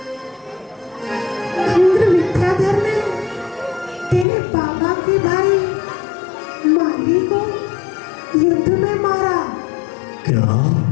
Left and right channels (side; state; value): right; drops out; at 4.2 s